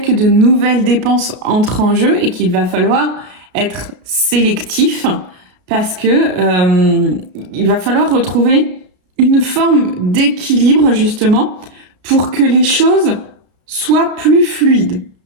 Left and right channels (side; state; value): left; late; 33 ms